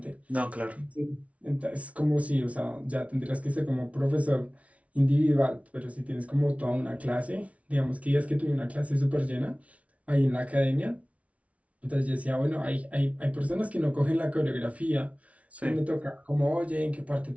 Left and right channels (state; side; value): late; left; 0.065 ms